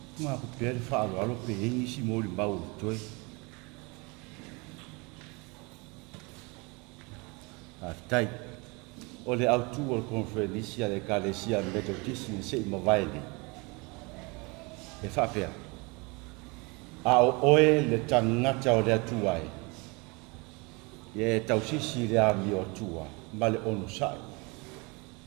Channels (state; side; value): quieter; left; 28.2 dB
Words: ma ko pe Faalavaau pe ingi si mo le mau toi a tai o le autu o conferencia le kalesia metodisi se ma vai e fa pe a o oe le tangata o le atuai e Tausi si le ami o tua ma le ono sai